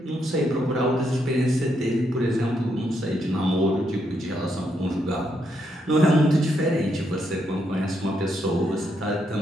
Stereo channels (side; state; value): both; normal; correlation 0.78